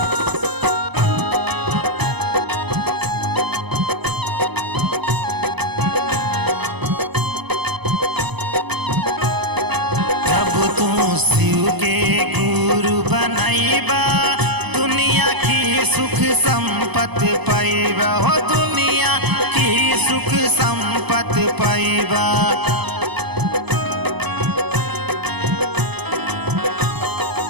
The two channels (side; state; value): left; late; 0.99 ms